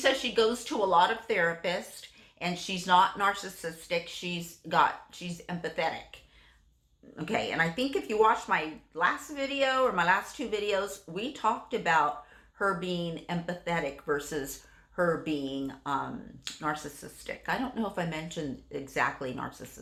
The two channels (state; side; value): identical; both; correlation 1.00